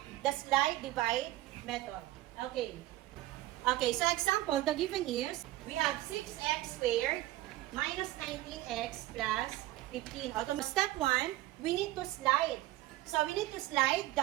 the slide divide method. Okay. Okay, so example, the given is, we have 6x squared minus 19x plus 15. Step 1, we need to slide. So we need to slide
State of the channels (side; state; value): left; quieter; 16.7 dB